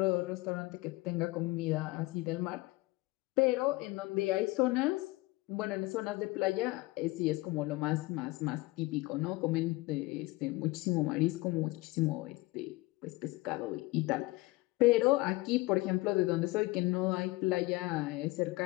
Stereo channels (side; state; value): right; quieter; 21.6 dB